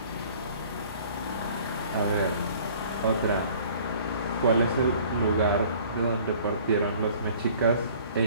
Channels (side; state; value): both; inverted; correlation -0.52